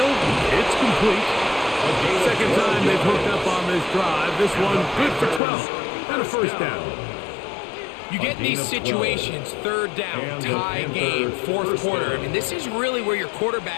it's complete. Second time they've hooked up on this drive. This one good for 12 and a first down. You get these situations, third down, tie game, fourth quarter. I mean, this is really where your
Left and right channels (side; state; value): right; drops out; at 5.4 s